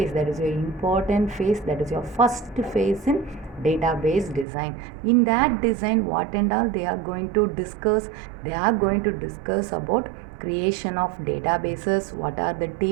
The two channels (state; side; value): drops out; left; at 4.5 s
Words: that is your important phase, that is your first phase in database design. In that design, what and all they are going to discuss? They are going to discuss about creation of databases, what are the